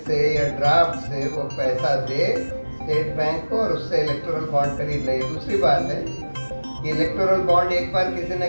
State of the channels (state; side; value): inverted; both; correlation -1.00